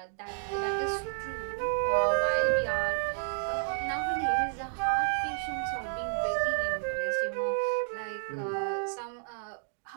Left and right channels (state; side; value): silent; left; digital silence